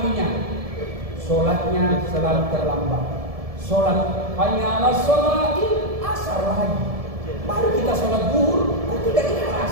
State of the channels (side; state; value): left; late; 1.7 ms